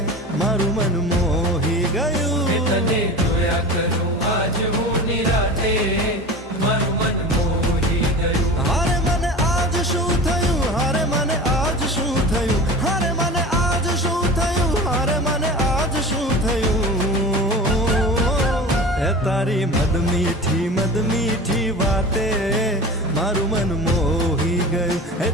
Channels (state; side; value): normal; both; correlation 0.34